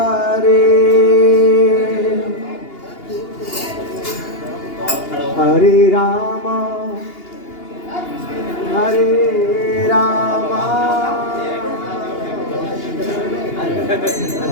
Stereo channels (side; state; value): right; late; 2.8 ms